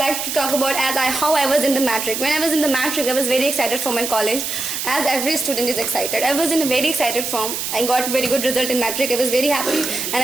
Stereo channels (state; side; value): noise; right; hiss, 3 dB below the sound